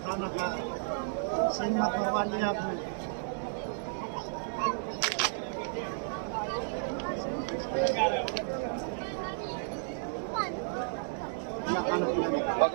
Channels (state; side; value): silent; left; digital silence